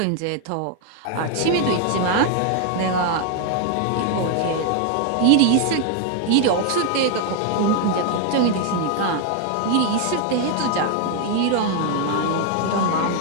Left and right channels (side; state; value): both; different; correlation 0.00